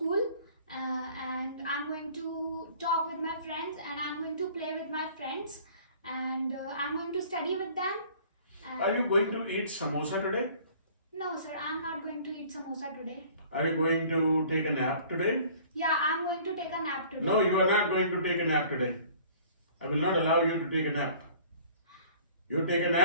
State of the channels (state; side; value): inverted; both; correlation -0.51